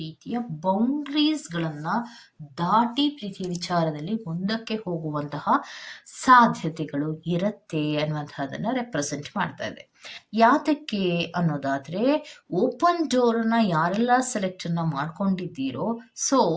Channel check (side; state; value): both; identical; correlation 1.00